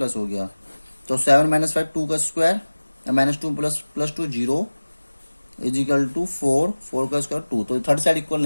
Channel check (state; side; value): inverted; both; correlation -1.00